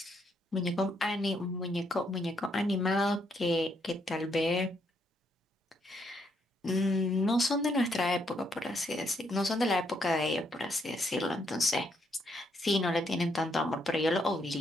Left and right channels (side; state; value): both; normal; correlation 0.74